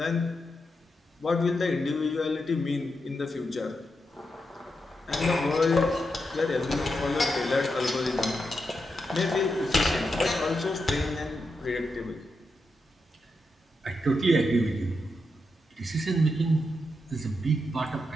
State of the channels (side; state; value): both; normal; correlation 0.85